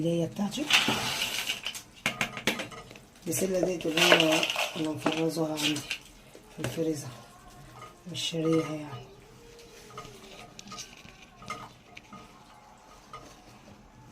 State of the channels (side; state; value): both; identical; correlation 1.00